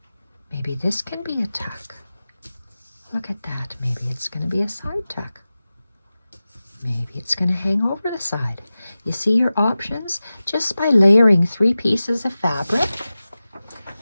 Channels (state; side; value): inverted; both; correlation -0.96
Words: Maybe this can be a tuck. Look at that. Maybe it's going to be a side tuck. Maybe it's going to hang over the side. You see your options? Just by layering 3 pieces of fabric,